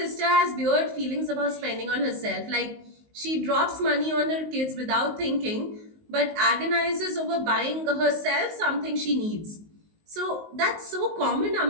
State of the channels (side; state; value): left; late; 19 ms